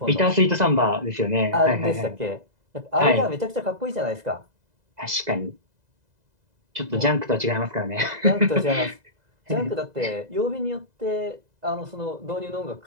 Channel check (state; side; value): late; left; 2.0 ms